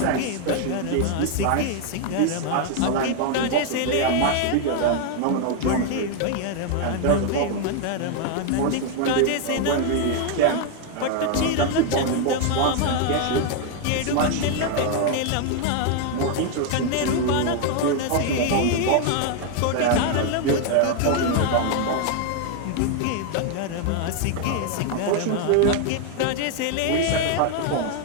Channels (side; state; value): both; different; correlation 0.00